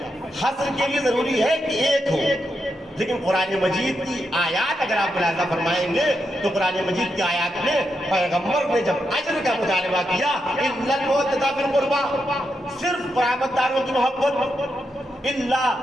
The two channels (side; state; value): both; normal; correlation 0.84